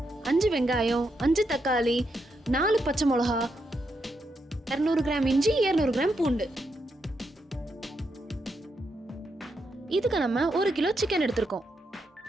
5 வெங்காயம், 5 தக்காளி, 4 பச்சை மிளகா, 200 கிராம் இஞ்சி, 200 கிராம் பூண்டு. இதுக்கு நம்ம 1 கிலோ சிக்கன் எடுத்திருக்கோம்.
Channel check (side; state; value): both; normal; correlation 0.82